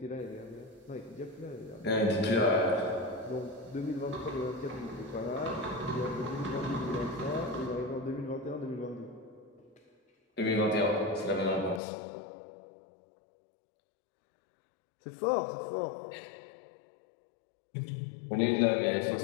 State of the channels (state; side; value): drops out; right; at 11.8 s